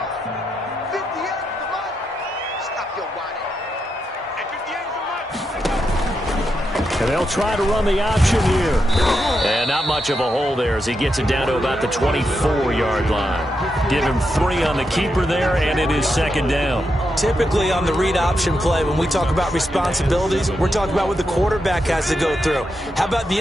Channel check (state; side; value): normal; both; correlation 0.84